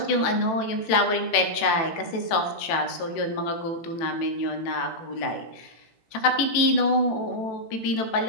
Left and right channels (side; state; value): right; late; 18 ms